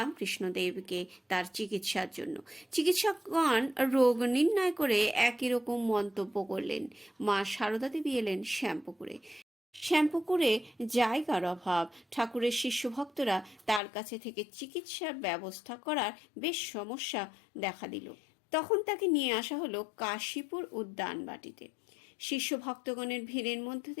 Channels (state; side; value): drops out; right; at 13.8 s